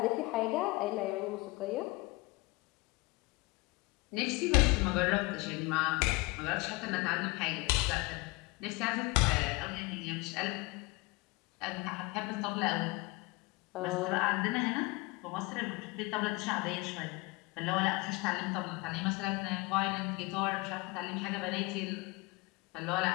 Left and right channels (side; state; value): right; quieter; 24.1 dB